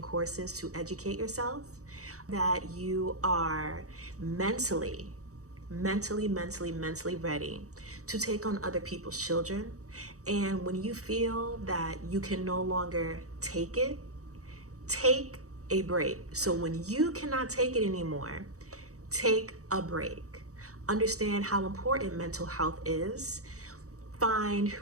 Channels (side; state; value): left; late; 0.65 ms